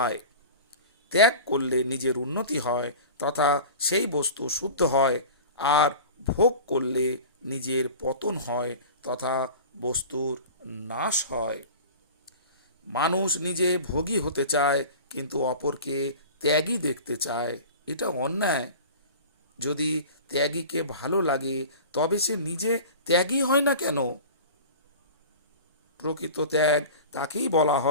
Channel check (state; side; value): inverted; both; correlation -0.37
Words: ত্যাগ করলে নিজের উন্নতি হয় তথা সেই বস্তু শুদ্ধ হয়, আর ভোগ করলে নিজের পতন হয় তথা বস্তুর নাশ হয়। মানুষ নিজে ভোগী হতে চায়, কিন্তু অপরকে ত্যাগী দেখতে চায়। এটা অন্যায়। যদি ত্যাগীকে ভালো লাগে তবে সে নিজে ত্যাগী হয় না কেন? প্রকৃত ত্যাগ তাকেই বলা